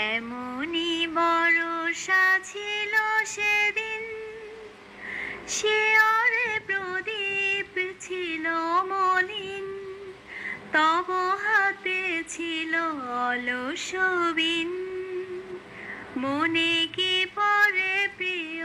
বর্ষা ছিল সেদিন, শিয়রে প্রদীপ ছিল মলিন, তব হাতে ছিল অলস বিন, মনে কি পড়ে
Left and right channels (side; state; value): both; identical; correlation 1.00